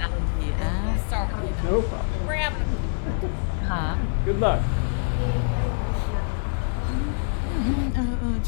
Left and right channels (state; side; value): silent; right; digital silence